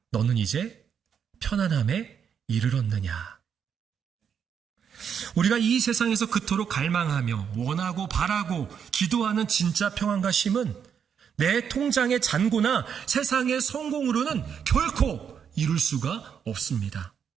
너는 이제 편안함에 이르렀느냐. 우리가 이 세상에서 그토록 갈망하며 원하고 바라고 기도하는 진짜 평안과 쉼은 내 통장의 잔고나 세상의 성공으로는 결코 이룰 수가 없습니다.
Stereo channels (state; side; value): quieter; left; 7.6 dB